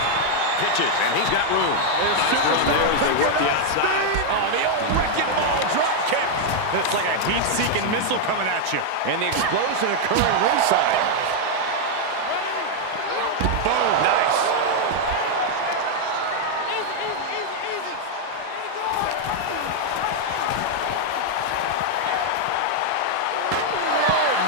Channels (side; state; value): both; different; correlation 0.00